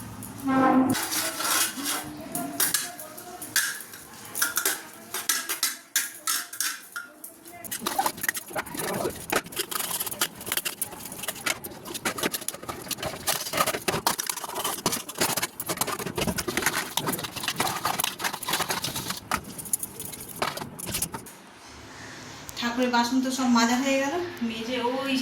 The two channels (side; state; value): both; identical; correlation 1.00